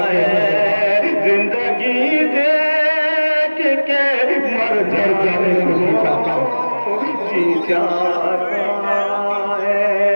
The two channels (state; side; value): inverted; both; correlation -1.00